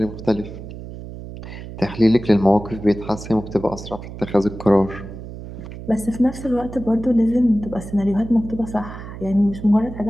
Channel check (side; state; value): right; noise; hum, 12 dB below the sound